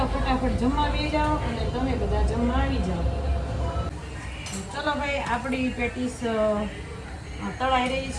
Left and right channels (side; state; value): both; identical; correlation 1.00